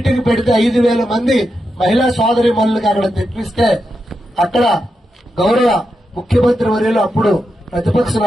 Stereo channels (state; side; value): normal; both; correlation 0.87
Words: పెడితే 5,000 మంది మహిళా సోదరి మనులకి అక్కడ తెప్పిస్తే అక్కడ గౌరవ ముఖ్యమంత్రి వర్యులు అప్పుడు ప్రతిపక్ష